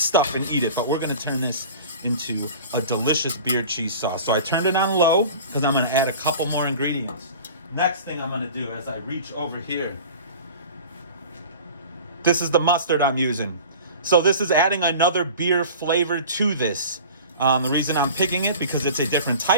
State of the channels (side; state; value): both; inverted; correlation -0.39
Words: and eat it, but we're gonna turn this into a delicious beer cheese sauce. So I turned it on low because I'm gonna add a couple more ingredients. Next thing I'm gonna do as I reach over here, this is the mustard I'm using. So this is adding another beer flavor to this. The reason I'm picking it because it's a different